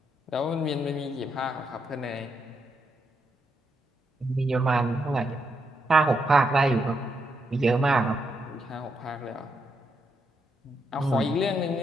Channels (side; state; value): both; normal; correlation 0.80